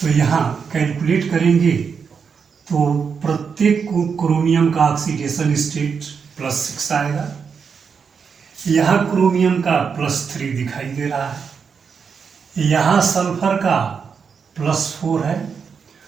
यहाँ कैलकुलेट करेंगे तो प्रत्येक क्रोमियम का ऑक्सीडेशन स्टेट +6 आएगा। यहाँ क्रोमियम का +3 दिखाई दे रहा है, यहाँ सल्फर का +4 है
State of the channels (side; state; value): left; quieter; 6.1 dB